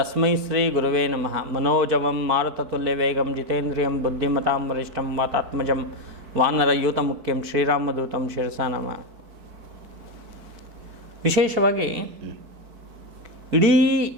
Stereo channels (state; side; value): late; left; 4.6 ms